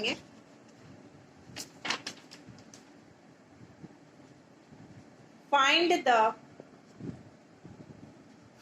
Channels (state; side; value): identical; both; correlation 1.00